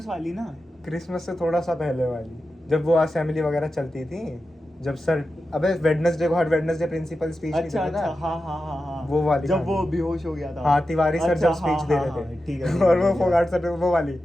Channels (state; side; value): normal; both; correlation 0.91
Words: वाली ना। क्रिसमस से थोड़ा सा पहले वाली, जब वो असेंबली वगैरह चलती थी, जब सर, अबे वेडनेसडे को हर वेडनेसडे प्रिंसिपल स्पीच नहीं अच्छा देता अच्छा, था, हाँ हाँ हाँ हाँ, वो वाली जब वो कहानी। बेहोश हो गया था। हाँ, तिवारी सर अच्छा, जब स्पीच हाँ, दे हाँ, रहे हाँ, थे, ठीक है, और वो समझ गया। फोगाट सर, वो वाली,